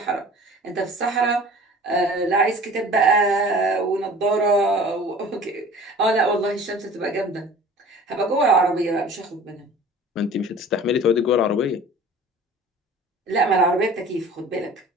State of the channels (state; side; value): normal; both; correlation 0.44